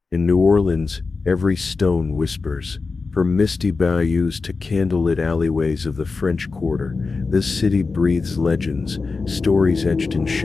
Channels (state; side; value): quieter; right; 4.3 dB